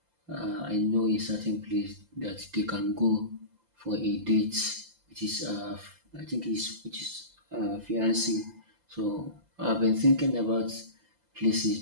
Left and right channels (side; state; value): left; late; 5.8 ms